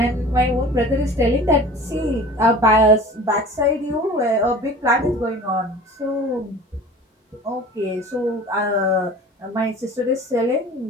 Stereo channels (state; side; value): normal; both; correlation 0.41